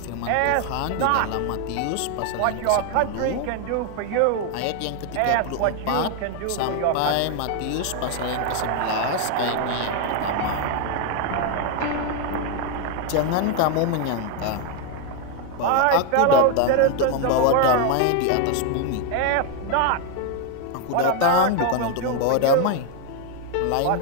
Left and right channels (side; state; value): both; different; correlation 0.01